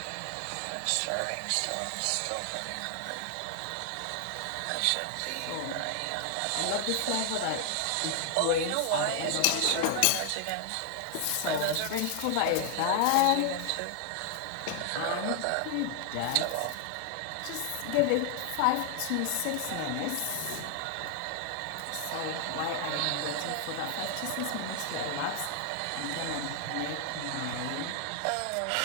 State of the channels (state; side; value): different; both; correlation 0.00